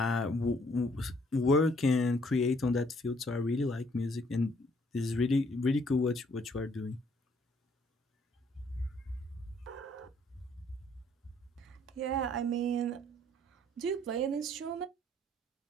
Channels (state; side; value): normal; both; correlation 0.65